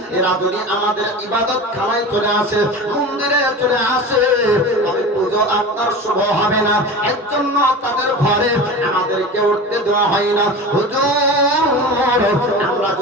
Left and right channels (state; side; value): normal; both; correlation 0.32